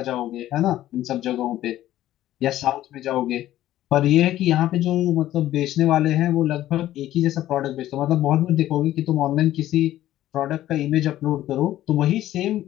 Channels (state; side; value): quieter; right; 13.7 dB